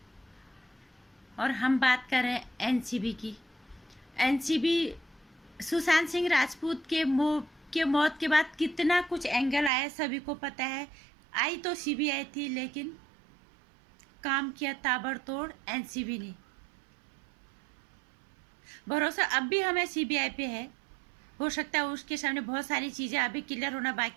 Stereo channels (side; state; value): left; drops out; at 9.7 s